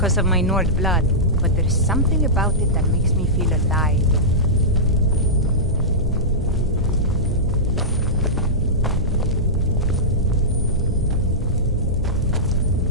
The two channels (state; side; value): normal; both; correlation -0.14